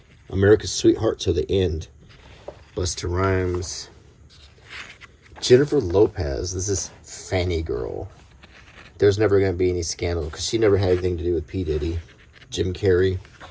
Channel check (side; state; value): both; identical; correlation 1.00